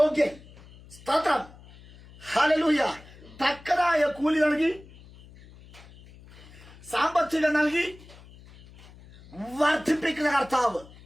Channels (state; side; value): noise; left; hum, 22 dB below the sound